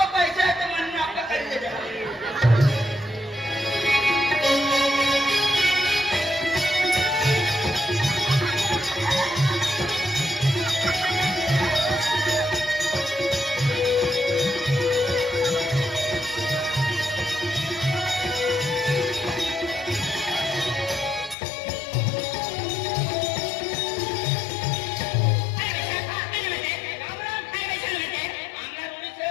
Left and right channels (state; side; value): drops out; right; at 21.4 s